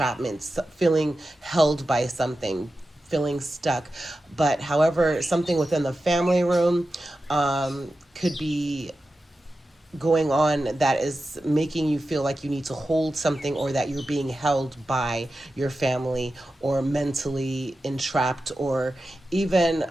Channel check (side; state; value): both; normal; correlation 0.92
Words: feeling held by something, feeling stuck. But however, something within the family room could be going on that is making you feel like you need to hold something or that you're being held by your family or mentally entrapped or even